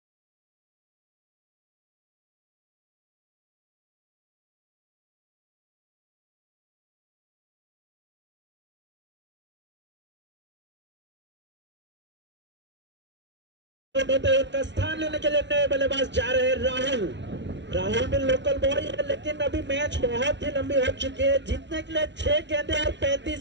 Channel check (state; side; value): late; left; 0.52 ms